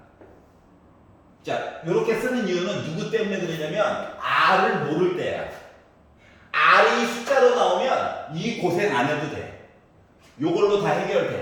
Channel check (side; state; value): both; identical; correlation 1.00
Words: 자, 이렇게 쓰는 이유는 누구 때문에 그러냐면 R을 모를 때야. R이 숫자로 나오면 이 고생 안 해도 돼. 요걸로 다